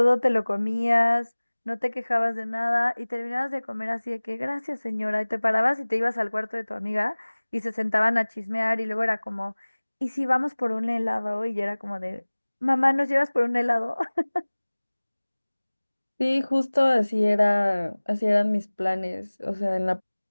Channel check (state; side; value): inverted; both; correlation -1.00